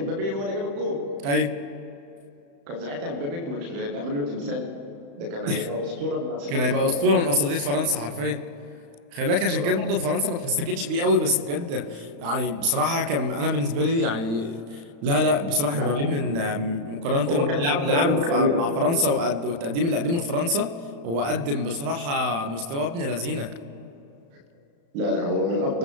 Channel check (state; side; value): late; left; 35 ms